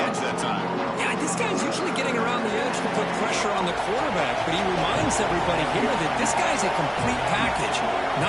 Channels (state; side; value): identical; both; correlation 1.00